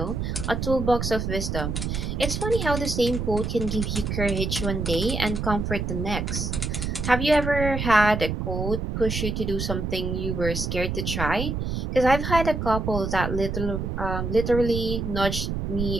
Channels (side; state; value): right; noise; rumble, 2 dB below the sound